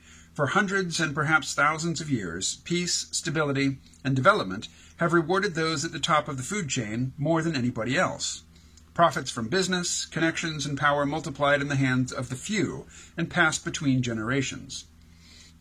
For hundreds and perhaps thousands of years, peace, stability, and development have rewarded those at the top of the food chain more than anybody else. Profits from business, connections, and power multiplied in the hands of the few and passed between generations.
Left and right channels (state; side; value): identical; both; correlation 1.00